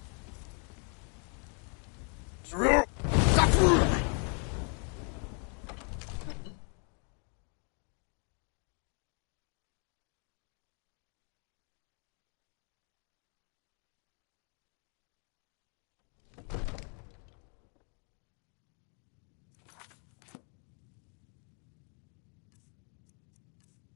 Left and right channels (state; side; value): quieter; right; 39.9 dB